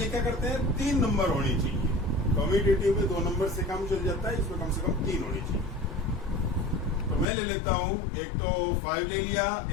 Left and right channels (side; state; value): right; drops out; at 7.2 s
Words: क्या करते हैं, 3 नंबर होने चाहिए। कम्यूटेटिव में 2 नंबर से काम चल जाता है, इसमें कम से कम 3 होने चाहिए। तो मैं ले लेता हूं, एक तो 5 ले लिया,